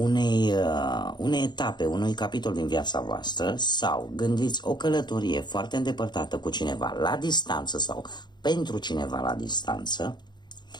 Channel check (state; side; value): late; right; 0.21 ms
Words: etape, unui capitol din viața voastră, sau gândiți o călătorie foarte îndepărtată cu cineva la distanță sau pentru cineva la distanță,